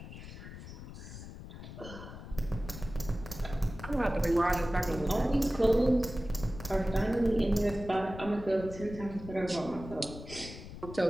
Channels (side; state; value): left; noise; rumble, 12 dB below the sound